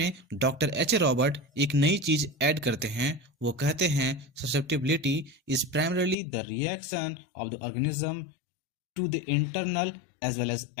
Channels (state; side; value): drops out; right; at 6.2 s